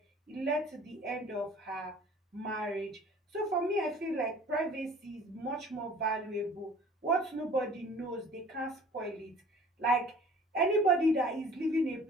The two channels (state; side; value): normal; both; correlation 0.49